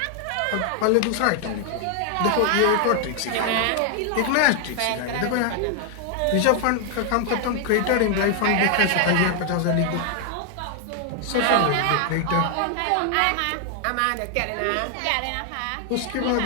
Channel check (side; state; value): both; different; correlation 0.00